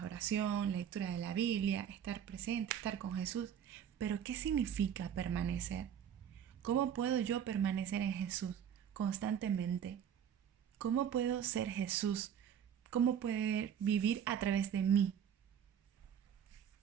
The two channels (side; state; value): left; quieter; 8.7 dB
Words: oración, lectura de la Biblia, estar presente, estar con Jesús. Pero ¿qué significa permanecer? ¿Cómo puedo yo permanecer en Jesús constantemente? ¿Cómo puedo ser Jesús? ¿Cómo puede vivir a través de mí?